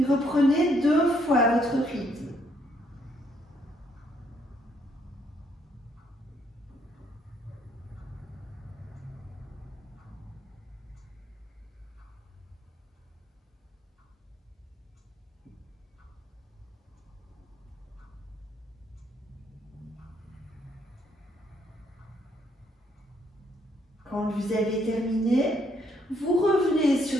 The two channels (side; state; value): both; normal; correlation 0.71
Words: reprenez 2 fois votre rythme. Quand vous avez terminé, vous revenez